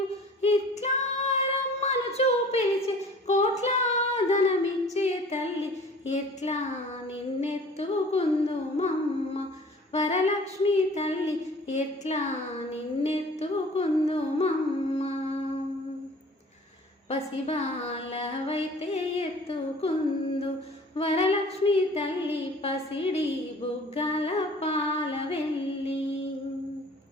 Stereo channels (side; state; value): both; normal; correlation 0.48